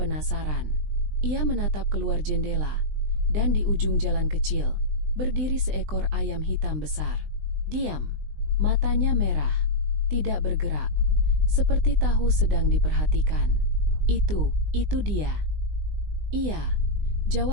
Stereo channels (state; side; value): late; left; 20 ms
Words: Ia menatap keluar jendela, dan di ujung jalan kecil, berdiri seekor ayam hitam besar. Diam, matanya merah, tidak bergerak, seperti tahu sedang diperhatikan. Itu dia." "Iya,"